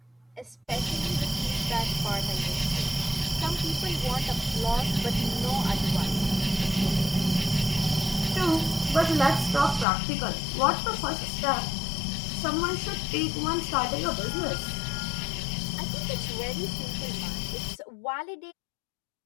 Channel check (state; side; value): drops out; right; at 9.9 s